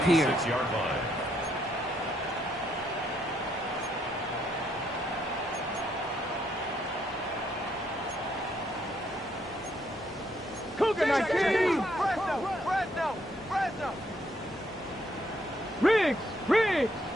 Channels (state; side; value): normal; both; correlation 0.73